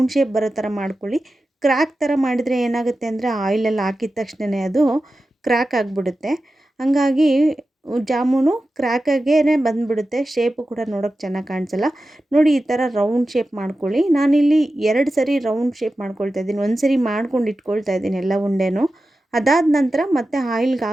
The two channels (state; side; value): normal; both; correlation 0.93